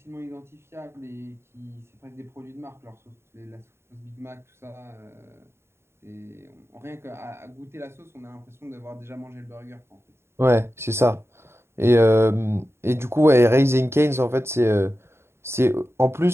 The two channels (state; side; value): late; left; 0.12 ms